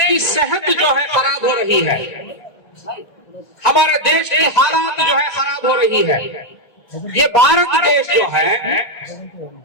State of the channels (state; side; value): late; right; 1.9 ms